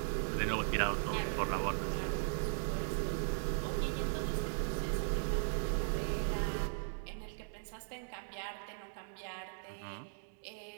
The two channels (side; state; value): left; silent; digital silence